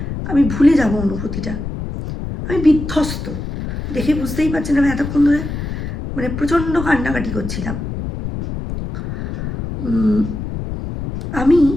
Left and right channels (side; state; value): left; noise; rumble, 6 dB below the sound